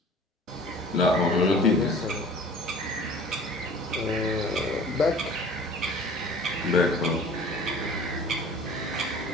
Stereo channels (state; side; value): normal; both; correlation 0.46